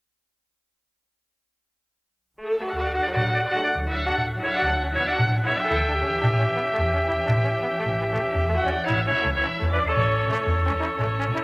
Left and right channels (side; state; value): both; identical; correlation 1.00